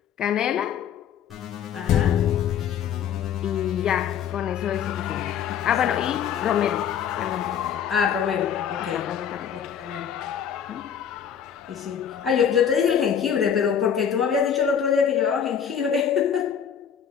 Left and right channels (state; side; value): quieter; right; 8.2 dB